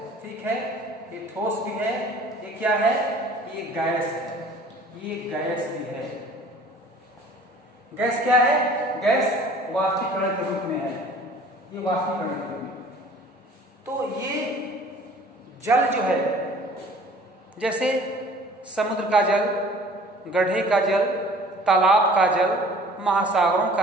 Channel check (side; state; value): both; normal; correlation 0.49